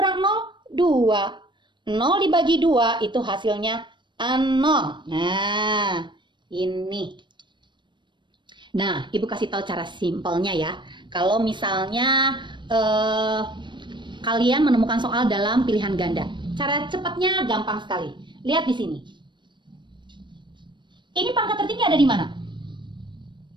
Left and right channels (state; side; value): late; left; 0.22 ms